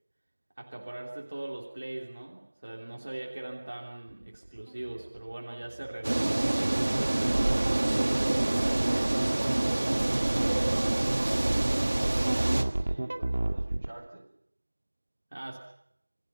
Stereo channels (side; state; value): both; inverted; correlation -1.00